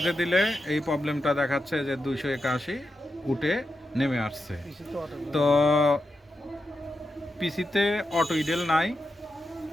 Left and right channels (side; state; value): both; normal; correlation 0.88